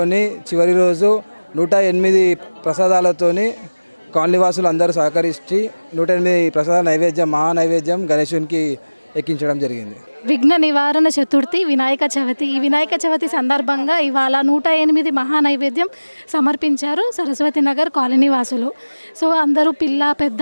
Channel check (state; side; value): inverted; both; correlation -1.00